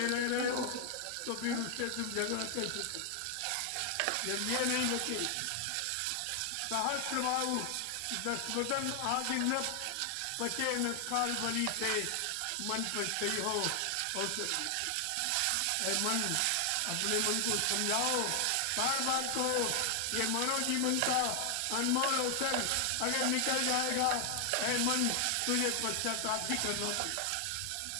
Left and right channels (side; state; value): both; different; correlation 0.00